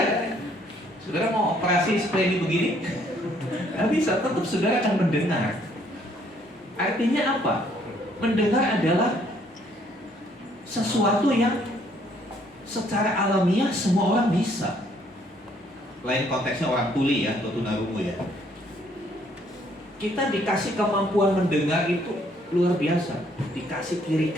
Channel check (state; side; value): normal; both; correlation 0.65